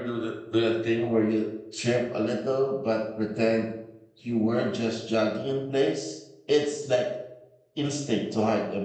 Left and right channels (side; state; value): both; identical; correlation 1.00